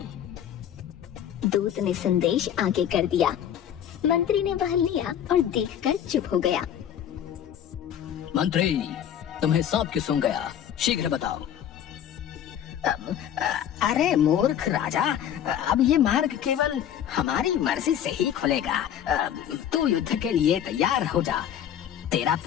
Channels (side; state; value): right; quieter; 9.9 dB